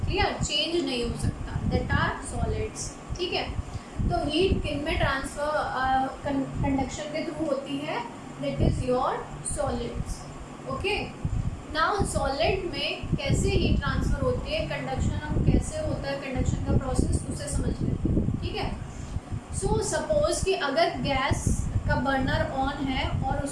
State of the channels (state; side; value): identical; both; correlation 1.00